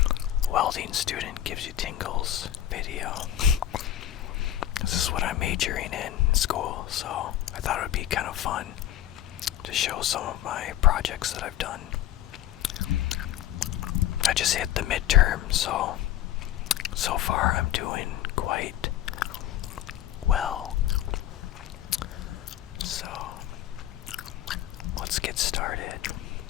Welding student gives you tingles video. This is what I'm majoring in school, so I thought it would be kind of fun to show some of my projects that I've done. I just hit the midterm, so far I'm doing quite well. So let's get started.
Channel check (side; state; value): right; quieter; 12.3 dB